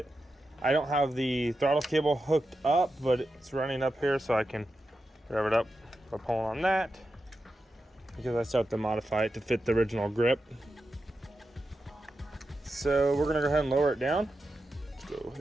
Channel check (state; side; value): normal; both; correlation 0.89